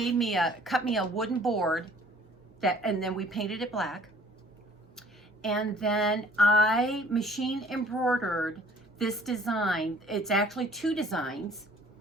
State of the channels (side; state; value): both; normal; correlation 0.55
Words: me cut me a wooden board that, and then we painted it black. And then I machine embroidered this design. It's actually 2 designs,